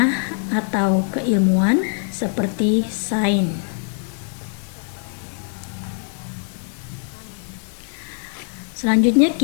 atau keilmuan seperti sains. Selanjutnya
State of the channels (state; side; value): silent; right; 55 dB below the other